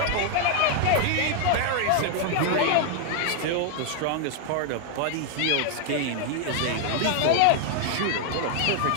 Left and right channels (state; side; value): different; both; correlation 0.00